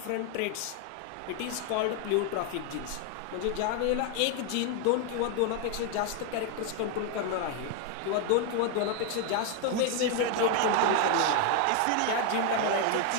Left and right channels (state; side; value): different; both; correlation 0.01